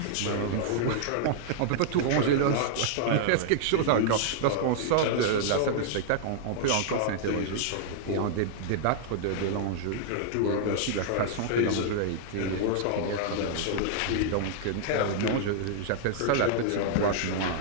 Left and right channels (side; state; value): both; different; correlation -0.01